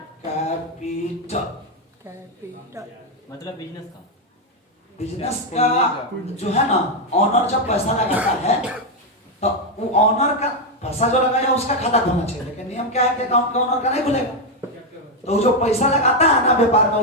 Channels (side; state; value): both; normal; correlation 0.04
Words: कैपिटल। मतलब बिजनेस का, बिजनेस का जो है ना, ऑनर जब पैसा लगाता है तो वो ऑनर का पैसा जो लगाया उसका खाता खुलना चाहिए, लेकिन नियम क्या है कि अकाउंट का ऑनर का नहीं खुलेगा। तो जो पैसा लगाता है ना व्यापार में,